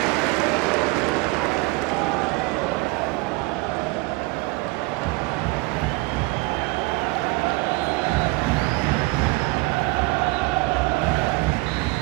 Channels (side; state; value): left; quieter; 23.9 dB